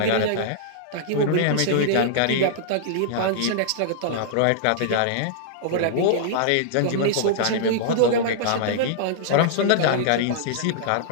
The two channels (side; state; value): both; different; correlation -0.02